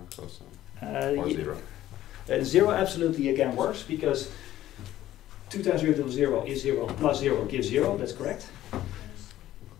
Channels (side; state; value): right; quieter; 13.7 dB